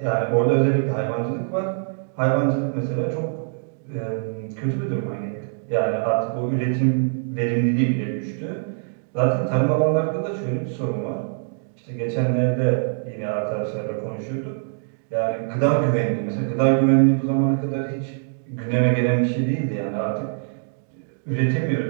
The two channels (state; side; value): silent; left; digital silence